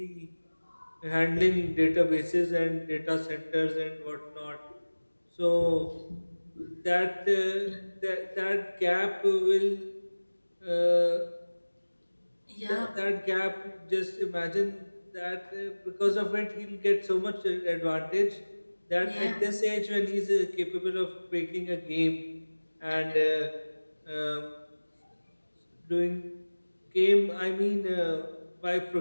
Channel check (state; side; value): inverted; both; correlation -1.00